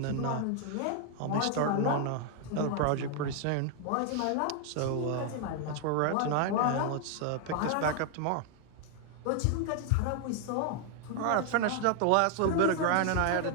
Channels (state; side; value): different; both; correlation 0.00